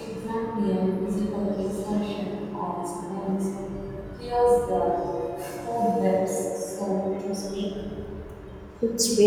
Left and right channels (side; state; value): both; identical; correlation 1.00